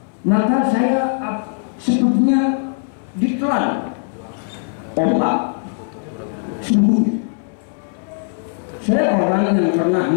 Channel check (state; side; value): silent; right; 63 dB below the other